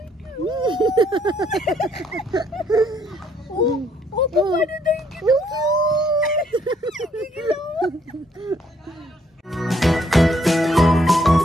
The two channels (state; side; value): normal; both; correlation 0.68